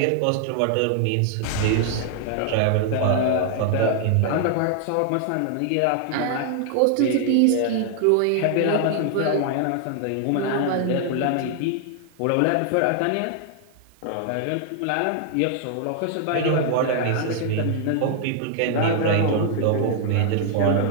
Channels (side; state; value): both; different; correlation 0.00